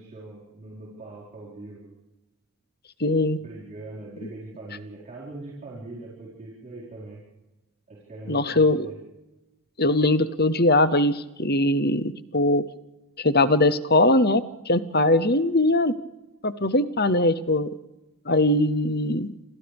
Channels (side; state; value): both; normal; correlation 0.01